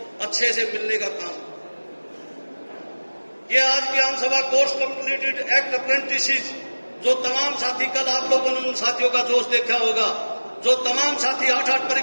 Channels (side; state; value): both; inverted; correlation -1.00